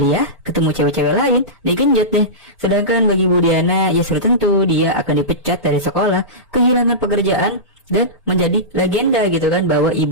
ketemu cewek-cewek lain, digenjot deh. Sedangkan bagi Bu Diana, ya sudah tentu dia akan dipecat dari sekolah, kehilangan pekerjaan, dan menjadi legenda gitu kan bahwa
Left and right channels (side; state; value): both; normal; correlation -0.17